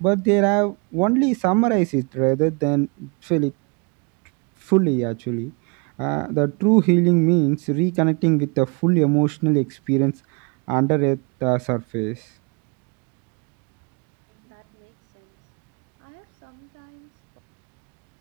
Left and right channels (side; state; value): left; quieter; 32.7 dB